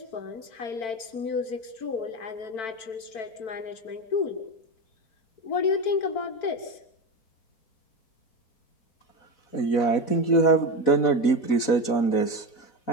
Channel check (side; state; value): right; late; 4.0 ms